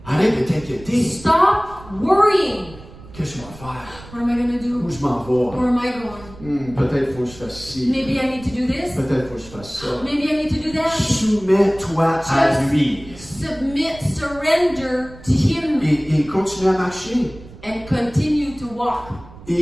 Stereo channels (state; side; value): noise; right; rumble, 19 dB below the sound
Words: Arrête de t'inquiéter. Stop worrying. Qu'est-ce que je vais faire? What am I going to Où do? je m'en Where vais? am I going? Peut-être qu'il faut que je fasse ci. Maybe I need to do this. Peut-être qu'il faut que je fasse ça. Maybe I need to do that. Soumets-toi à lui. Submit, surrender to Him, Et continue à marcher. and continue to walk. Et